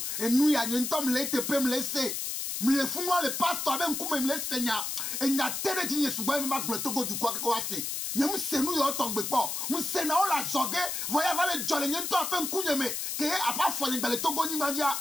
enu ya nyento mle tepe mle se mle funwa le pastor abe nkume mle senya enya tere jinye sugba me magble togo du kwa ko ase nyem senu yo tongbe po mu sena o la zoge voya vale jole nyento ape nkunye me ke apa fole gbele togo ni madia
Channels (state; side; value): noise; left; hiss, 3 dB below the sound